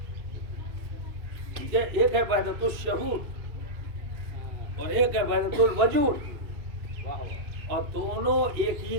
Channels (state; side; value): late; left; 2.4 ms